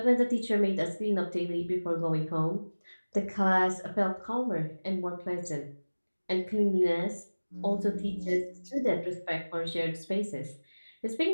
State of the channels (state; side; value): inverted; both; correlation -1.00